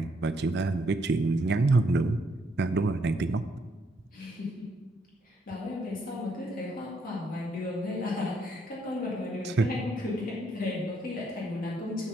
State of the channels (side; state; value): both; normal; correlation 0.72